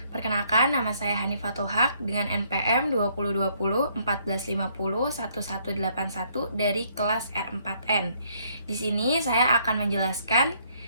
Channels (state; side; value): inverted; both; correlation -0.68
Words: Perkenalkan, nama saya Hanifatul Haq dengan NPM 2020 1450 1181 dari kelas R4N. Di sini saya akan menjelaskan